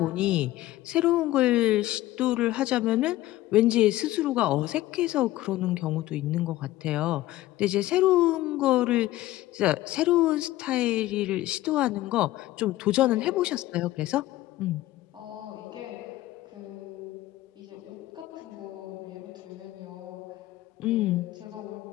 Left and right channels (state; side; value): quieter; right; 16.1 dB